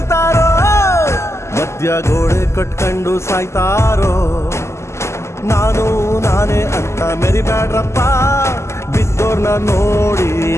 ಮಧ್ಯ ಗೋಡೆ ಕಟ್ಕೊಂಡು ಸಾಯ್ತಾರೋ ನಾನೇ ಅಂತ ಮೆರಿಬ್ಯಾಡ್ರಪ್ಪ ಬಿದ್ದೋರ್ನ ನೋಡಿ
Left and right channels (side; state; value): right; late; 0.13 ms